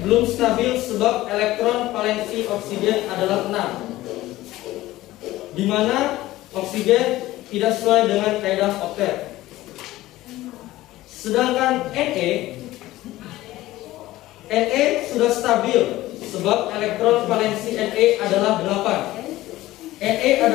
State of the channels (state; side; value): quieter; right; 16.6 dB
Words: belum stabil sebab elektron valensi oksigen adalah 6, di mana oksigen tidak sesuai dengan kaidah oktet. Sedangkan Na sudah stabil sebab elektron valensi Na adalah 8. Na